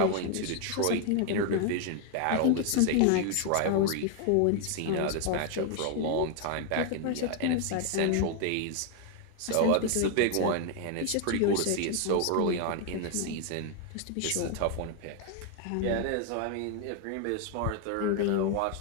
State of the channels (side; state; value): both; different; correlation 0.00